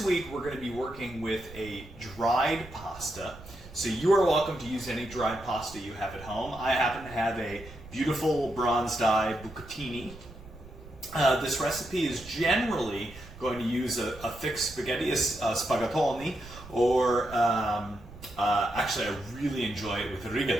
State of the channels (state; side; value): noise; right; rumble, 17 dB below the sound